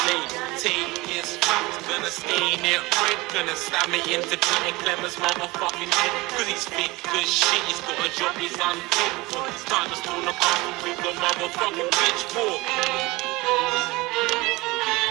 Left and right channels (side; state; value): left; quieter; 22.0 dB